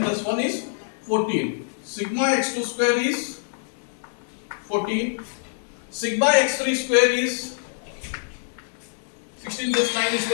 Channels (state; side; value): silent; right; 62 dB below the other